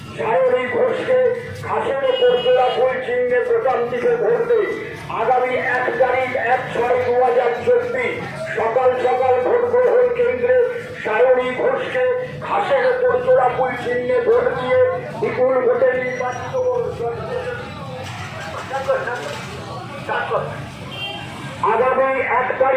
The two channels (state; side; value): identical; both; correlation 1.00